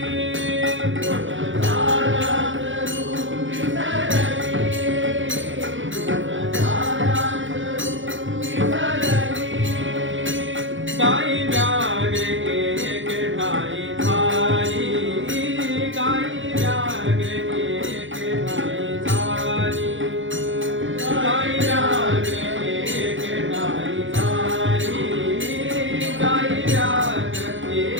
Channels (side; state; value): left; late; 0.56 ms